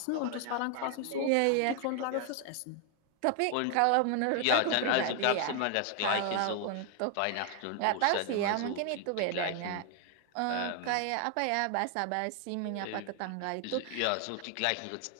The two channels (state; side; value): different; both; correlation 0.00